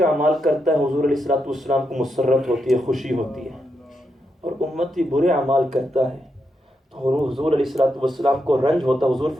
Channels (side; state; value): both; normal; correlation 0.83